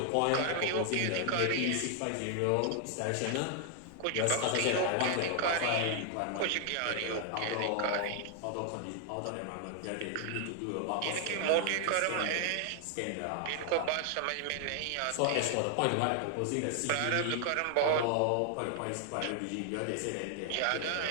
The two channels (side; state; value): both; different; correlation 0.00